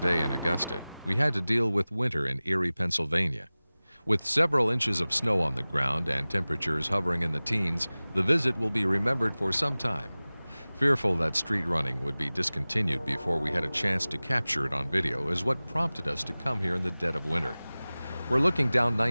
in Augusta, we had to deal with winter in Erie, Pennsylvania. With several inches of snow on the ground and temperatures hovering in the teens, the visit will be remembered for some time. Fearful that street running would be discontinued before we had a chance to capture it on video is what prompted us to come here in the dead of winter. We're looking down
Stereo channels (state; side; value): inverted; both; correlation -0.98